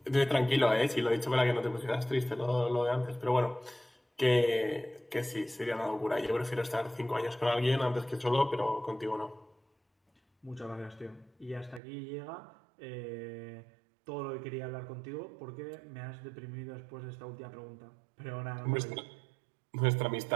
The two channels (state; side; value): drops out; left; at 11.8 s